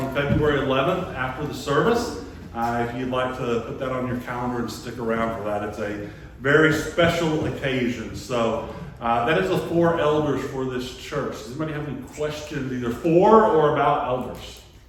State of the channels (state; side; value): identical; both; correlation 1.00